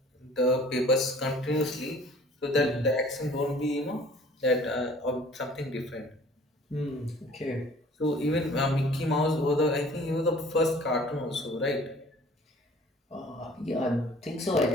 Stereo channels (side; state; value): both; normal; correlation 0.51